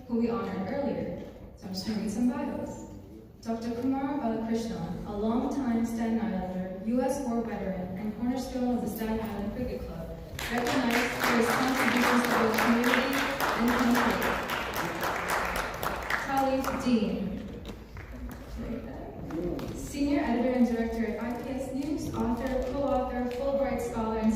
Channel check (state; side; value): identical; both; correlation 1.00